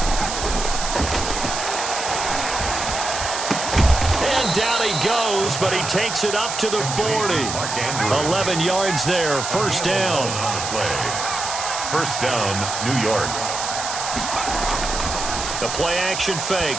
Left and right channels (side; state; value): right; noise; hiss, 5 dB below the sound